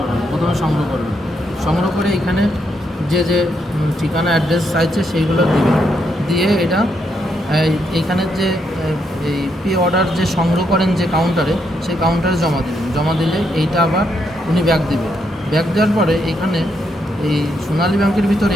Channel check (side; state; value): both; normal; correlation 0.78